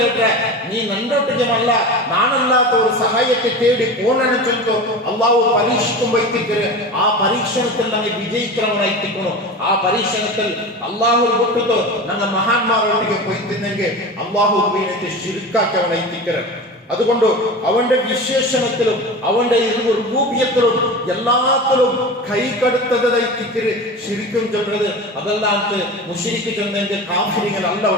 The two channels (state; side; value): normal; both; correlation 0.30